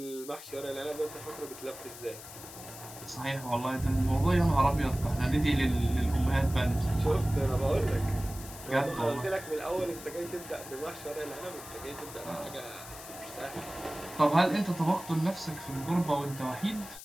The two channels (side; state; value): left; noise; hiss, 14 dB below the sound